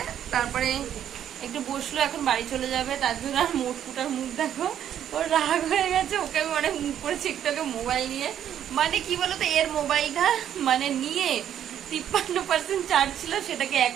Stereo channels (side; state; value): left; quieter; 10.1 dB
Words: তারপরে একটু বসলো, এখন বাড়ি চলে যাবে। তার জন্য আর মোটকুটার মুখ দেখো, ওর রাগ হয়ে গেছে। ওকে আমি অনেক মুখ করেছি একটু আগে মোবাইল নিয়ে, মানে কি বলতো এর মোবাইলটা মানে নিয়ে 53% চার্জ ছিল, সেটাকে